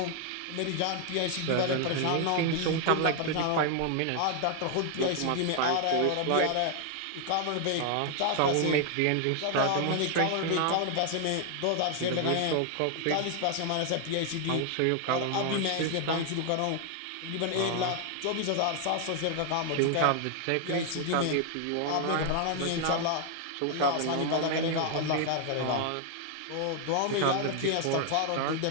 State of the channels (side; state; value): both; different; correlation 0.00